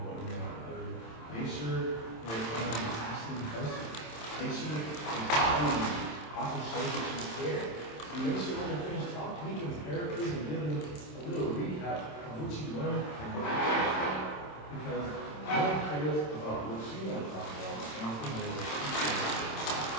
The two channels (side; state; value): right; late; 27 ms